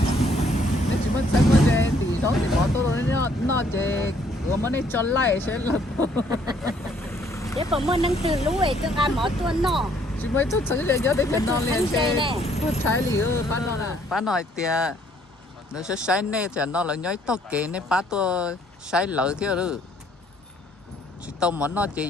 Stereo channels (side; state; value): both; normal; correlation 0.65